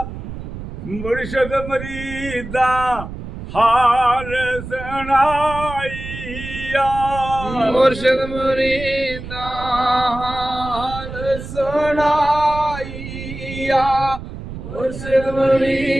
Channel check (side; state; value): right; noise; rumble, 10 dB below the sound